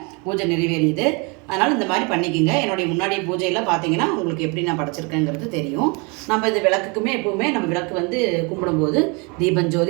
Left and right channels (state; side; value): quieter; left; 30.9 dB